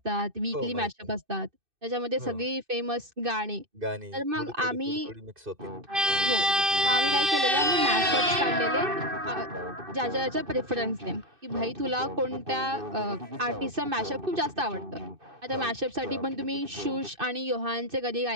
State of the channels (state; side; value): late; left; 2.6 ms